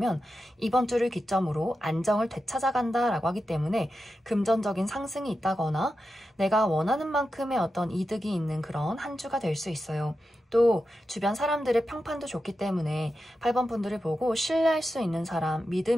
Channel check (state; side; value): normal; both; correlation 0.90